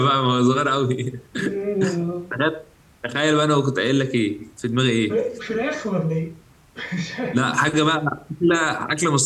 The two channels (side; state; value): both; identical; correlation 1.00